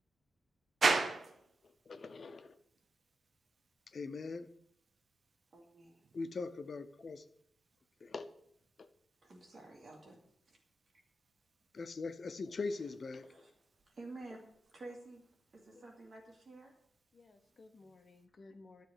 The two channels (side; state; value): both; normal; correlation 0.88